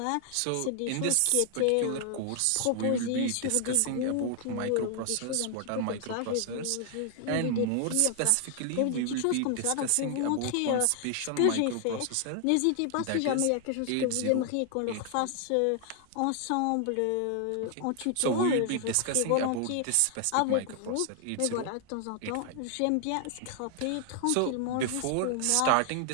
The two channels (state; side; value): different; both; correlation 0.00